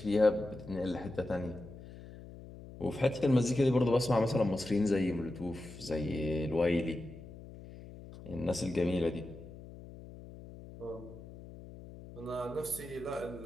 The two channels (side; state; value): left; noise; hum, 15 dB below the sound